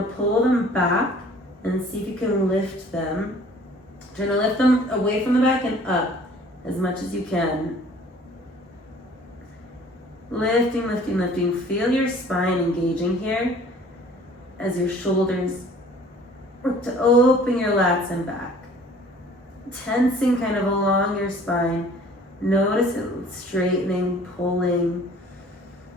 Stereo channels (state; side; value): normal; both; correlation 0.52